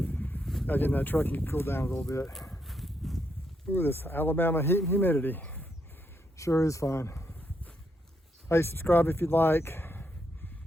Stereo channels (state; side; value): normal; both; correlation 0.78